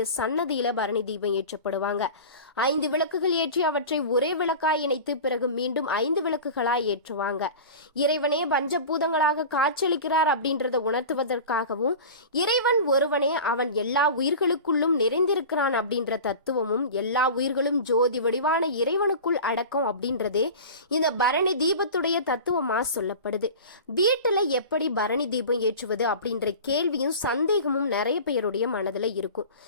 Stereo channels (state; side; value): inverted; both; correlation -0.34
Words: சன்னதியில பரணி தீபம் ஏற்றப்படுவாங்க. 5 விளக்குகள் ஏற்றி அவற்றை ஒரே விளக்காய் இணைத்து பிறகு மீண்டும் 5 விளக்குகளாய் ஏற்றுவாங்க. இறைவனே பஞ்சபூதங்களாக காட்சியளிக்கிறார் அப்படின்றத உணர்த்துவதற்காகவும், இறைவன் ஒருவனே, அவன் எல்லா உயிர்களுக்குள்ளும் அனைத்திலும் நிறைந்திருக்கிறான் அப்படின்ற தத்துவமும் எல்லா உயிர்களும் ஜோதி வடிவான இறைவனுக்குள் அடக்கம் அப்படின்றதே இந்த பரணி தீபத்துடைய தத்துவமா சொல்லப்படுது. வீட்டுல எப்படி பரணி தீபம் ஏற்றுவது அப்படின்ற கேள்வியும் சந்தேகமும் நிறைய பேருடைய மனதுல இருக்கும்.